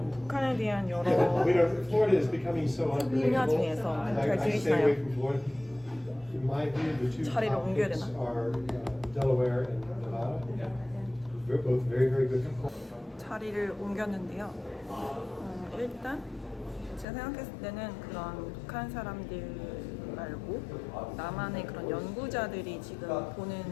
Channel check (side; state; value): right; drops out; at 17.1 s